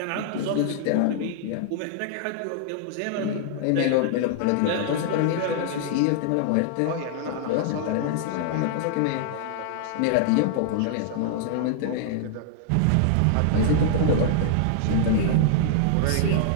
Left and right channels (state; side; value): different; both; correlation -0.01